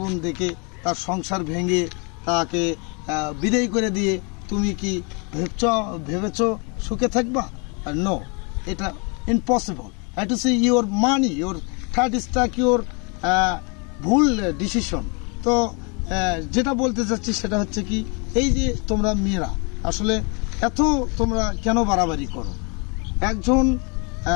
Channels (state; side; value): quieter; right; 33.7 dB